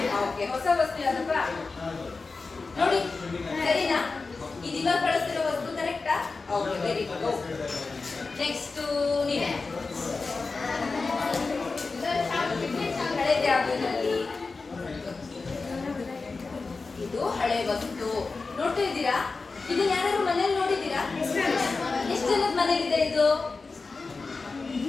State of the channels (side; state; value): right; quieter; 4.1 dB